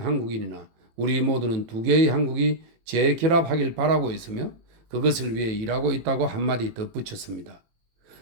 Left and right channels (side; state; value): left; late; 18 ms